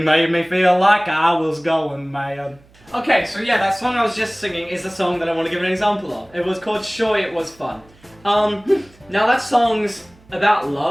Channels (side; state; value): right; noise; hum, 28 dB below the sound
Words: made me feel like I was going mad. Okay, so yeah, that song I was just singing is the song that I want to give an example of. It was called Sure It Was Fun. Now that song's about